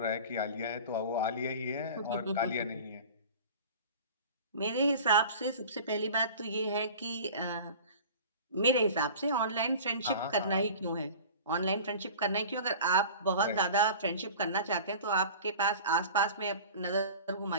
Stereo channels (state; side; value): inverted; both; correlation -0.39